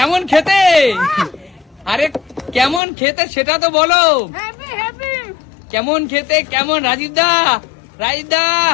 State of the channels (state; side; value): drops out; right; at 2.8 s